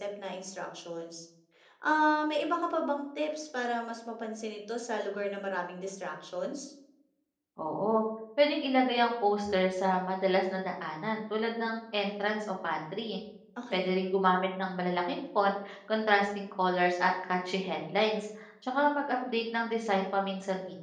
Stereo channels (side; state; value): both; identical; correlation 1.00